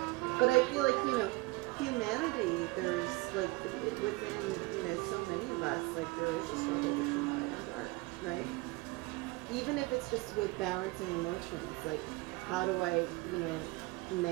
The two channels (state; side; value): quieter; left; 23.3 dB